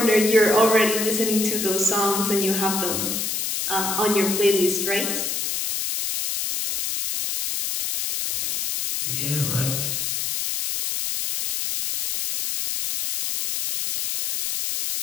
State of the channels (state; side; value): noise; left; hiss, 1 dB below the sound